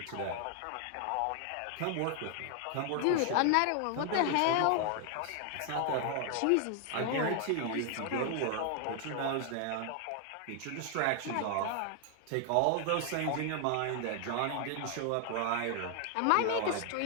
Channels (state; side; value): different; both; correlation 0.00